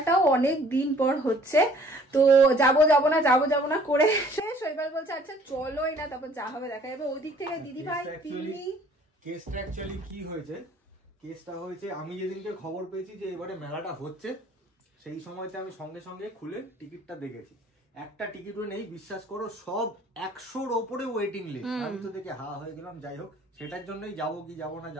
অনেক দিন পর হচ্ছে। তো যাবো না করে শৈবাল বলছে আচ্ছা চলোই না, তারপর যা হবে দেখা যাবে। ওইদিক থেকে দিদি ভাই কেসটা অ্যাকচুয়ালি কি হয়েছে, কেসটা হয়েছে আমি যেদিনকে খবর পেয়েছি যে এবারে মেলাটা হচ্ছে, সেই সময়তে আমি সঙ্গে সঙ্গে খুলে টিকিটটা দেখেছি। একটা টিকিটও নেই, বিশ্বাস করো, সব 100-র ওপরে ওয়েটিং লিস্ট। আমি তো দেখে হা হয়ে গেলাম। যাই হোক, সেটার জন্যই যাবো কি যাবো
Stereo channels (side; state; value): both; normal; correlation 0.56